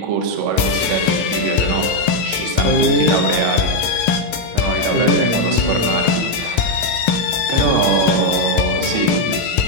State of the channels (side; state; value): right; late; 18 ms